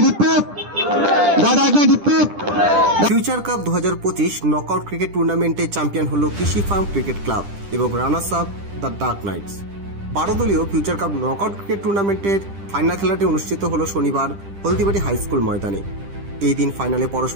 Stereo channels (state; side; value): late; left; 10 ms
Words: হিট্টেপ, দাদা এক না হিট্টেপ। ফিউচার কাপ 2025 নকআউট ক্রিকেট টুর্নামেন্টে চ্যাম্পিয়ন হলো কৃষি ফার্ম ক্রিকেট ক্লাব এবং runners up the dark knights. 12 দলীয় ফিউচার কাপ নকআউট ক্রিকেট টুর্নামেন্টের ফাইনাল খেলাটি অনুষ্ঠিত হলো শনিবার হলদিবাড়ি হাই স্কুল ময়দানে। এই দিন ফাইনালে